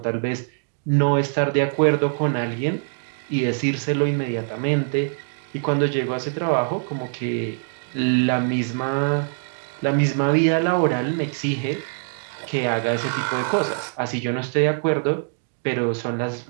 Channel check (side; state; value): left; silent; digital silence